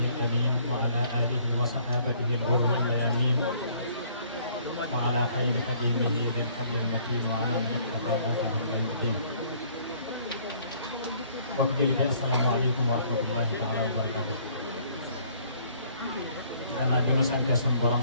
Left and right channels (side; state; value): both; inverted; correlation -0.60